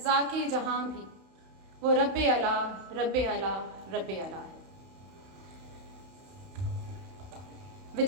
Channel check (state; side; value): late; left; 31 ms